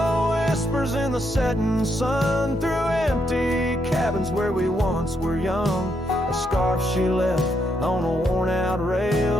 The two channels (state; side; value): normal; both; correlation 0.78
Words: whispers in the setting sun through empty cabins where we once were young. A scarf she left on a worn-out